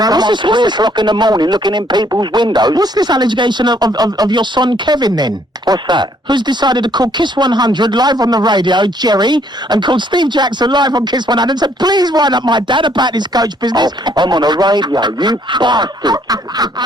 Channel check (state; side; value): normal; both; correlation 0.66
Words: on 3 o'clock in the morning looking in people's windows. What's this allegation of your son Kevin then? What's that? Who's decided to call Kiss 100 live on the radio, Jerry, and called Steve Jackson live on Kiss 100 and said, please wind up my dad about this coach business. Oh, I'm on the radio, you bastard.